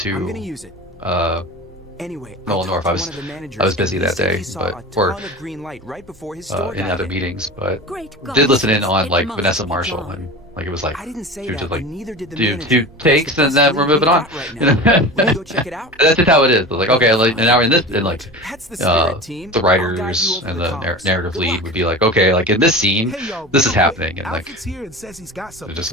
Nolan North. I was busy that day, but or in other meetings, but did listen in on like Vanessa Marshall, and like it was like she was just like do 2 takes and then we're moving on. You know? That's just how it is. Like okay, like and now we're in this, and like the writers and the narrative lead would be like okay, like in this scene, this is happening, and like it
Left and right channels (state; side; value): normal; both; correlation 0.32